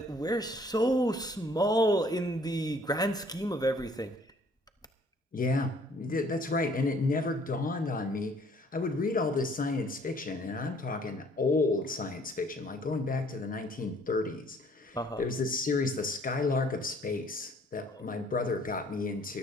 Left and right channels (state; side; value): normal; both; correlation 0.59